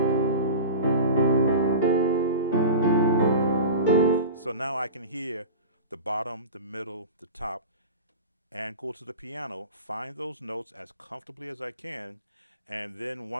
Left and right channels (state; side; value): inverted; both; correlation -0.32